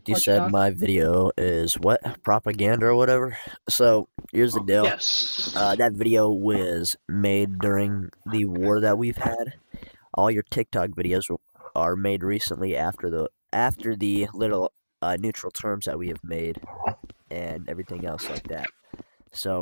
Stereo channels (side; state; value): both; inverted; correlation -1.00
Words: You said my video is what? Propaganda or whatever? So, here's the deal. Yes. That video was made during the war that we've had. All your TikTok videos are made recently after the little neutral terms that we have made and everything else like that.